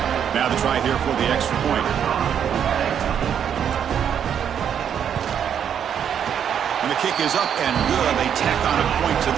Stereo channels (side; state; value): left; quieter; 8.6 dB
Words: Now the try here for the extra point. And the kick is up and good. They tack on a point to